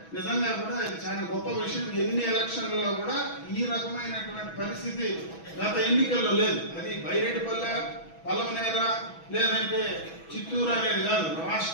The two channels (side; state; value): right; late; 6.1 ms